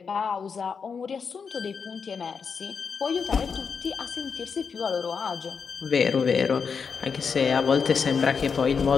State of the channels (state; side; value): quieter; right; 5.9 dB